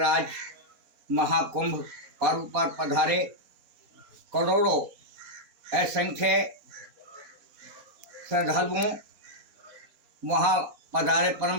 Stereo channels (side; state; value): left; late; 4.1 ms